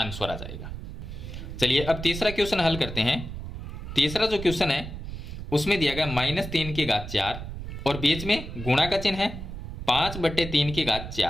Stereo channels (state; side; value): noise; right; rumble, 8 dB below the sound